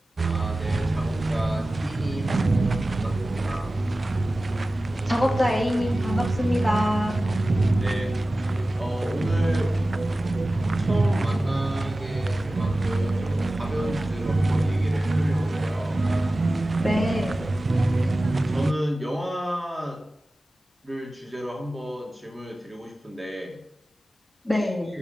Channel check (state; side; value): normal; both; correlation 0.96